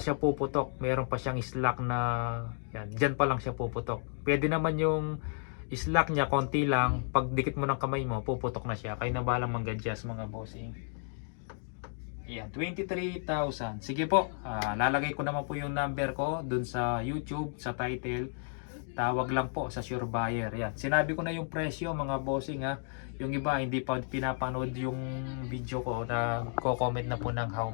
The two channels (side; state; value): right; silent; 56 dB below the other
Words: puputok, meron pa siyang slack na yan, dyan pa lang siya puputok. Pwede naman yung slack niya konti lang, pag dikit mo ng kamay mo puputok na siya. Kayo na balang mag-adjust mga bossing. Yan, 23,000. Sige po, lalagay ko naman po yung number ko dun sa YouTube, sa title. Tawag lang po sa sure buyer. Yan, sinabi ko na yung presyo mga bossing ha. Yung iba hindi pa pinapanood yung video ko, na ko-comment na po ng how